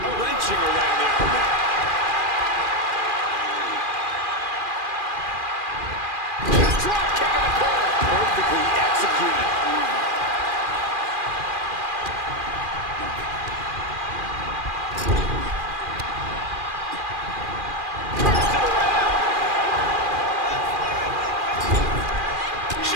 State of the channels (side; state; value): left; late; 2.4 ms